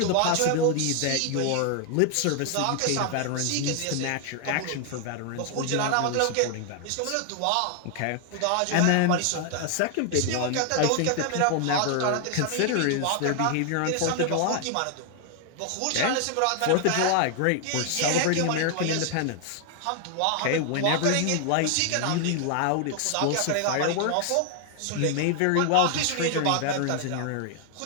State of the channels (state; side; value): different; both; correlation 0.00